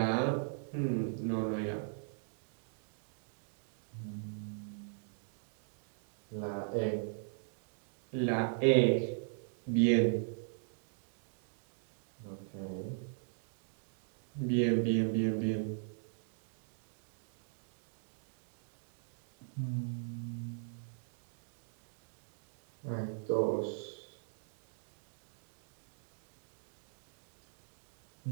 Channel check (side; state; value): left; silent; digital silence